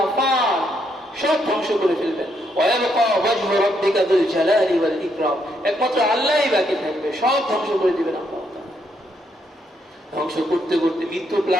ফান সব ধ্বংস করে ফেলবেন। ওয়ায়াবকা ওয়াজহু রাব্বিকা যুল জালালি ওয়াল ইকরাম, একমাত্র আল্লাহই বাকি থাকবে, সব ধ্বংস করে দিবেন আল্লাহ। ধ্বংস করতে করতে মৃত্যু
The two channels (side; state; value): both; normal; correlation 0.76